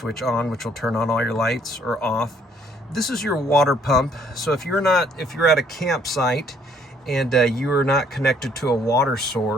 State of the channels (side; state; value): both; normal; correlation 0.64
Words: on, which will turn on all your lights, or off. This is your water pump. So if you're at a campsite and you are not connected to a water